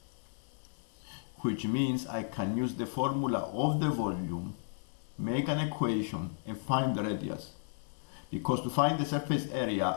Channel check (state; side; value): silent; right; 55 dB below the other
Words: which means I can use the formula of the volume, make an equation, and find the radius. Because to find the surface